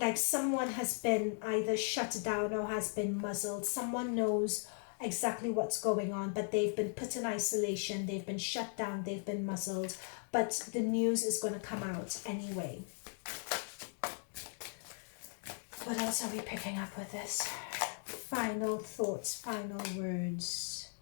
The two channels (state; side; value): silent; right; 53 dB below the other